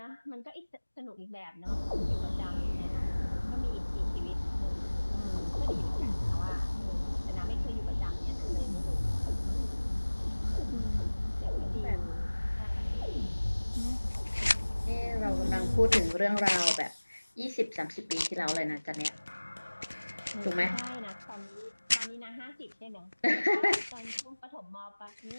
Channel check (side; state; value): both; inverted; correlation -1.00